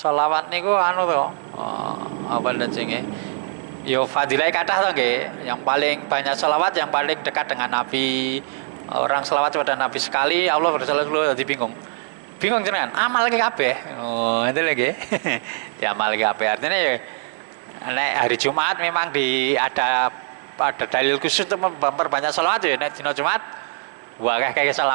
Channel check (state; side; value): silent; left; digital silence